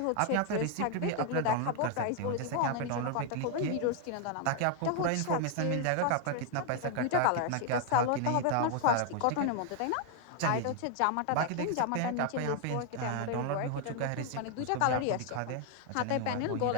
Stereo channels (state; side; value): different; both; correlation 0.00